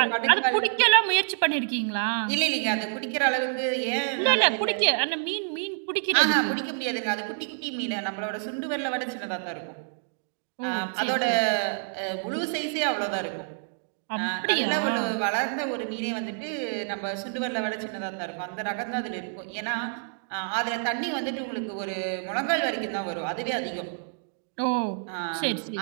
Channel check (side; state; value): left; silent; digital silence